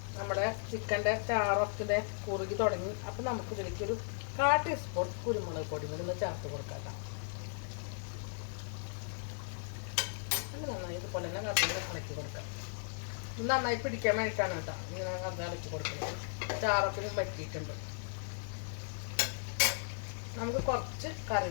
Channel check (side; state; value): right; silent; digital silence